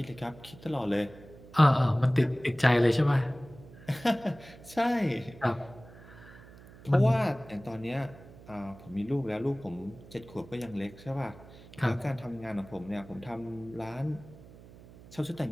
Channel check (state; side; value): noise; right; hum, 20 dB below the sound